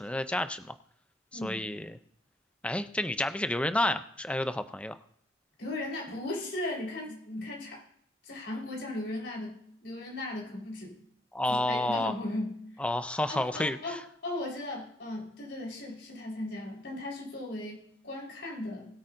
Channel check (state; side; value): normal; both; correlation 0.70